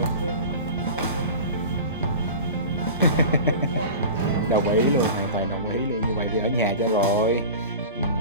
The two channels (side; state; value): both; inverted; correlation -0.34